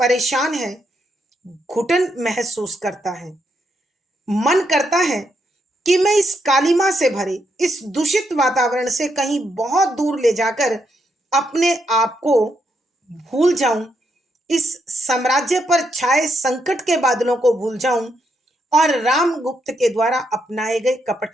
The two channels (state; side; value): normal; both; correlation 0.79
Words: है, घुटन महसूस करता है। मन करता है कि मैं इस कालिमा से भरे इस दूषित वातावरण से कहीं बहुत दूर ले जाकर अपने आप को भूल जाऊं, इस साम्राज्य पर छाए संकट के बादलों को भूल जाऊं और रामगुप्त के द्वारा अपनाए गए